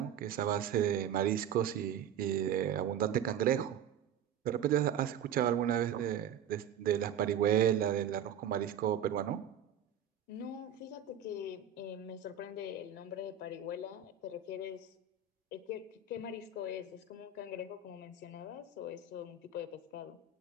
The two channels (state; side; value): quieter; left; 7.8 dB